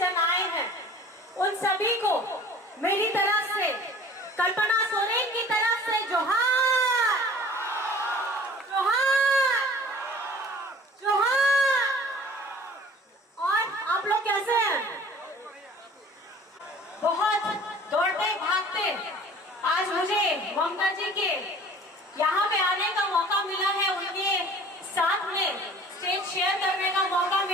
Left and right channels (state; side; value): normal; both; correlation 0.47